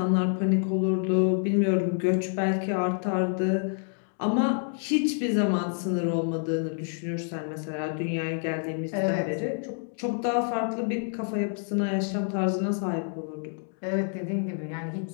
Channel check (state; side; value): silent; right; 58 dB below the other